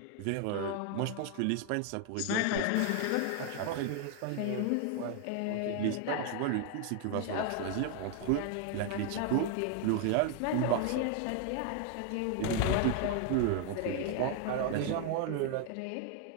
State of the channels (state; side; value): different; both; correlation 0.00